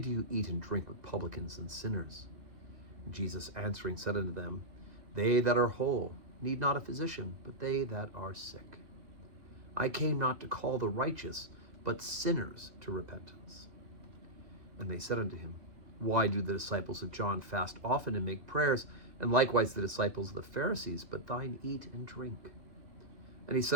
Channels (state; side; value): late; left; 2.2 ms